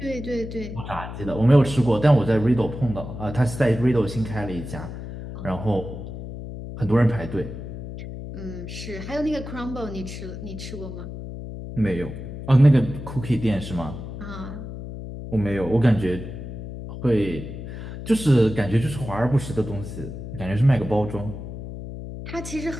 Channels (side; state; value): left; noise; hum, 9 dB below the sound